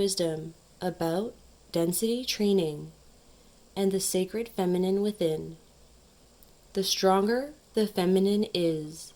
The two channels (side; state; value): both; identical; correlation 1.00